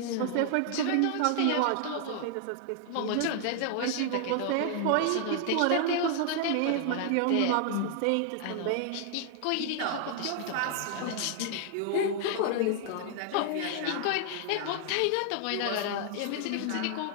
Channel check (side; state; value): both; different; correlation 0.00